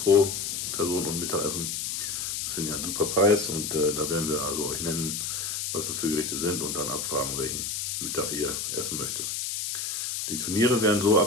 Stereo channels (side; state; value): left; noise; hiss, 3 dB below the sound